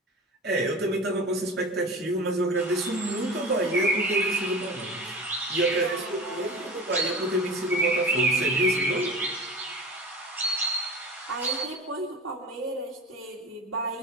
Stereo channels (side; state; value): both; normal; correlation 0.34